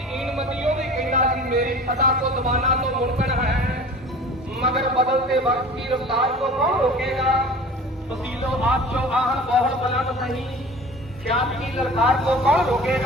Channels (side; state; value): both; normal; correlation 0.41